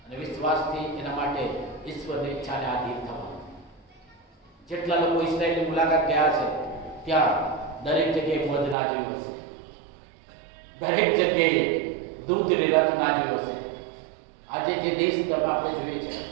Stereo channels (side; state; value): left; drops out; at 8.8 s